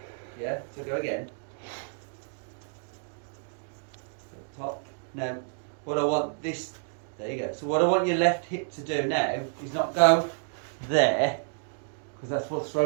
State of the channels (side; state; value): left; silent; 58 dB below the other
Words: Yeah. So go again. Top. Now, what I want this, there you go. So what I want your left hip to do now is not go there, because that's what's